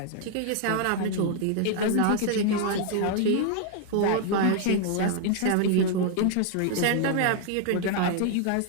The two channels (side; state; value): both; different; correlation 0.00